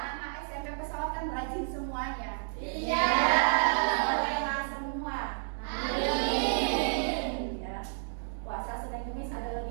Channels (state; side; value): silent; left; digital silence